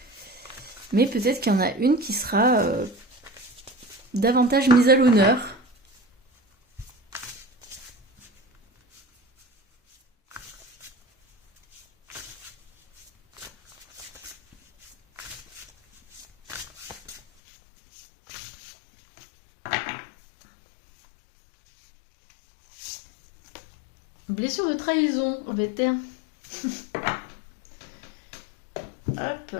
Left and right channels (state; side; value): drops out; right; at 17.2 s